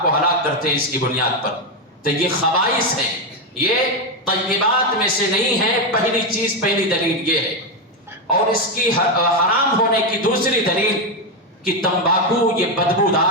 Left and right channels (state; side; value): normal; both; correlation 0.08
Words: کو ہلاک کرتے ہیں اس کی بنیاد پر؟ تو یہ خبائث ہیں، یہ طیبات میں سے نہیں ہے۔ پہلی چیز، پہلی دلیل یہ ہے۔ اور اس کی حرام ہونے کی دوسری دلیل کہ تمباکو یہ